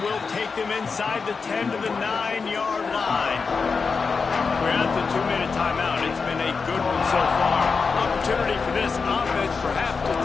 will take them inside the 10 to the 9-yard line. We're at the 2-minute timeout. It's been a good one so far. Opportunity for this offense perhaps to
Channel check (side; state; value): right; quieter; 5.0 dB